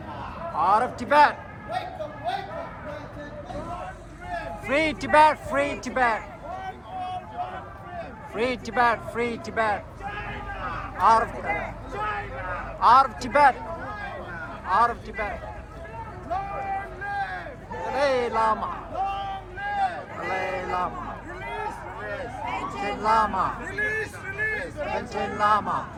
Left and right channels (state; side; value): identical; both; correlation 1.00